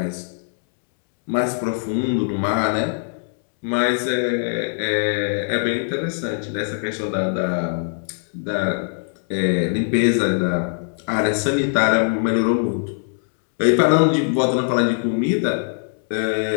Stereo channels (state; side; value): silent; right; 65 dB below the other